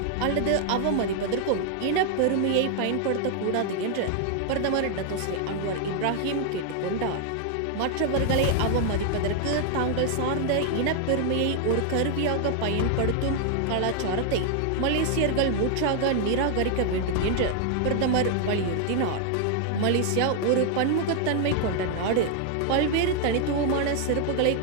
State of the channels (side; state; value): both; different; correlation 0.00